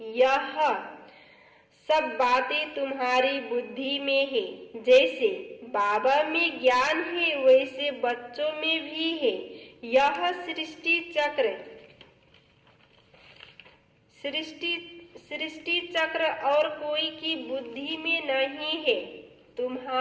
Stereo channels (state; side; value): identical; both; correlation 1.00